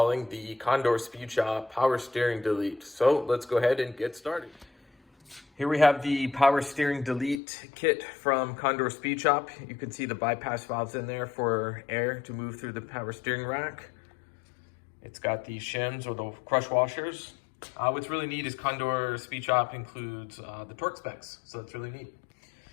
the Condor Speed Shop Power Steering Delete. So let's go ahead and get started. Here we have the Power Steering Delete kit from Condor Speed Shop. You can see the bypass valves in there for air to move through the power steering rack. It's got the shims or the crush washers. What's really neat is Condor Speed Shop includes the torque specs, so that's really neat.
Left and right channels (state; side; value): drops out; right; at 7.4 s